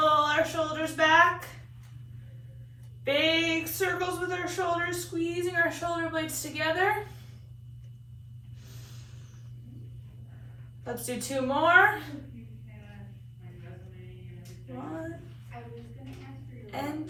shoulders back. Big circles with our shoulders, squeezing our shoulder blades together. Let's do 2 more. 1 and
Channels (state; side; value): identical; both; correlation 1.00